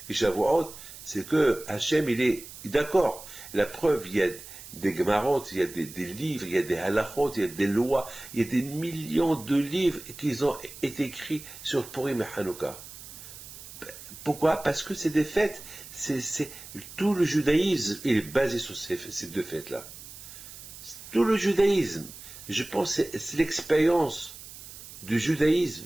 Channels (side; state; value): right; noise; hiss, 15 dB below the sound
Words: et Shavuot, c'est que Hachem, il est d'accord. La preuve, il y a des Gemarot, il y a des livres, il y a des halachot, il y a des lois, il y a des millions de livres qui ont été écrits sur Purim et Hanouka. Pourquoi? Parce que c'est des fêtes, tout le judaïsme est basé sur ces deux fêtes-là. Tout le judaïsme, je pense, c'est l'expérience du judaïsme,